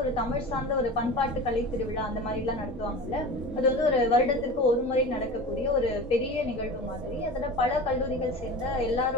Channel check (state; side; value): normal; both; correlation 0.33